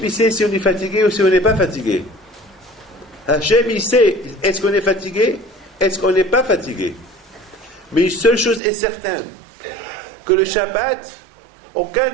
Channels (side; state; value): left; drops out; at 8.6 s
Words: il sait si on est fatigué ou si on n'est pas fatigué. Hachem, il sait, est-ce qu'on est fatigué? Est-ce qu'on n'est pas fatigué? Mais une seule chose est certaine, que le Shabbat, aucun